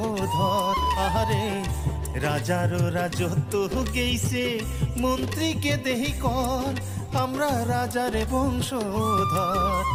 আরে রাজারও রাজত্ব গেইছে মন্ত্রীকে দেহি কর, আমরা রাজার বংশধর।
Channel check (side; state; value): both; identical; correlation 1.00